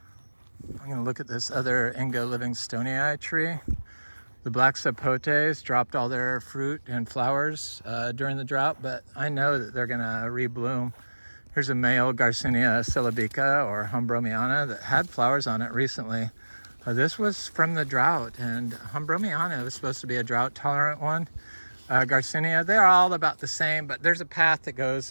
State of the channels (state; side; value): inverted; both; correlation -1.00